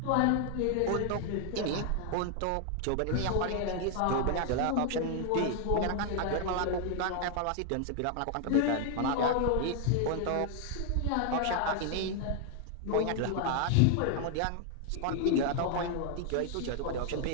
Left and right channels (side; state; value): both; different; correlation 0.00